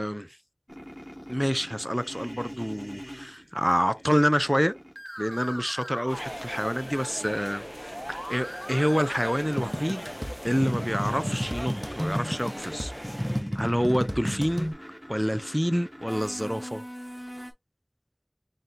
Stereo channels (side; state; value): both; identical; correlation 1.00